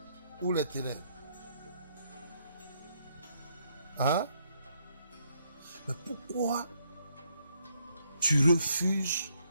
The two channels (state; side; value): inverted; both; correlation -0.72